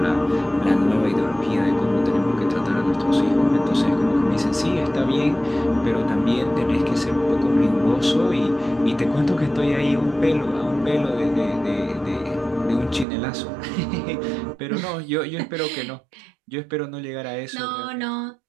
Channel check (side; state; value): left; drops out; at 13.1 s